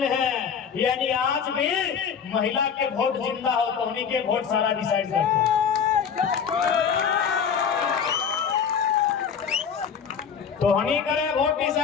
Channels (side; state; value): right; quieter; 7.1 dB